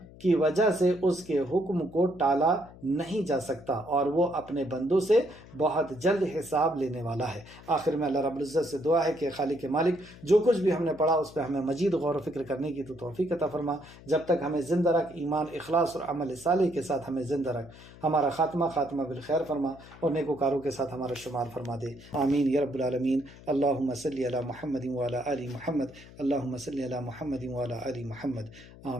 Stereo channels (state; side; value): noise; left; hum, 20 dB below the sound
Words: کی وجہ سے اس کے حکم کو ٹالا نہیں جا سکتا، اور وہ اپنے بندوں سے بہت جلد حساب لینے والا ہے۔ آخر میں اللہ رب العزت سے دعا ہے کہ خالق مالک جو کچھ بھی ہم نے پڑھا اس پہ ہمیں مزید غور و فکر کرنے کی تو توفیق عطا فرما، جب تک ہمیں زندہ رکھ، ایمان، اخلاص اور عمل صالح کے ساتھ ہمیں زندہ رکھ، ہمارا خاتمہ بالخیر فرما، اور نیکوکاروں کے ساتھ ہمارا شمار فرما دے، آمین یا رب العالمین۔ اللہم صلی علی محمد وعلی آل محمد، اللہم صلی علی محمد وعلی آل محمد،